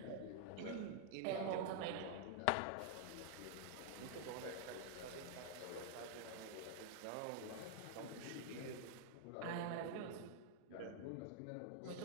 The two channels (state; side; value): different; both; correlation -0.01